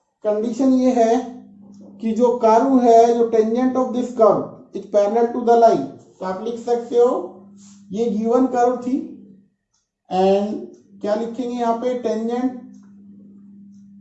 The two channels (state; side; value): identical; both; correlation 1.00